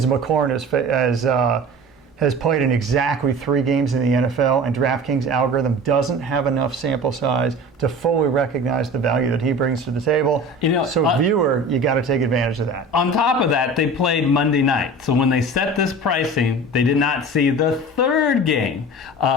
McLaurin has played in exactly 3 games in the NFL, and DraftKings algorithm doesn't have enough sample size to fully recognize the value that he brings to the table. Viewer, you got to take advantage of that. On top of that, they played Monday night. So when they set this pricing, they did not see the third game,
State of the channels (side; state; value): both; normal; correlation 0.37